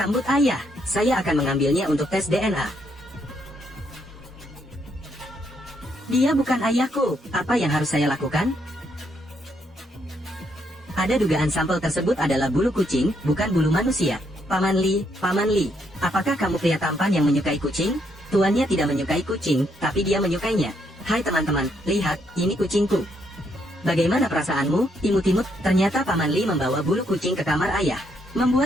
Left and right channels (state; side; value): normal; both; correlation 0.74